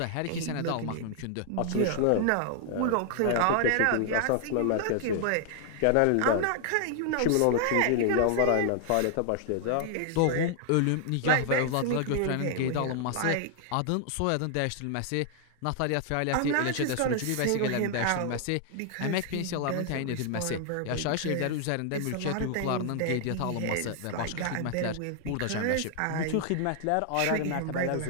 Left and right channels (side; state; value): both; different; correlation 0.00